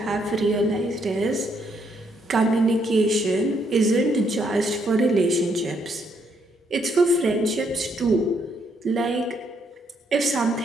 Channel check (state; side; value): normal; both; correlation 0.73